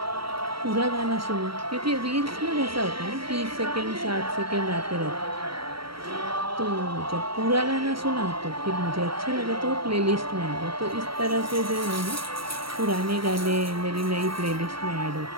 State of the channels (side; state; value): left; late; 0.74 ms